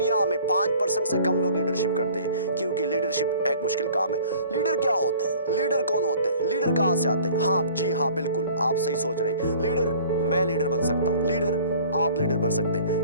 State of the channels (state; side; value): inverted; both; correlation -0.49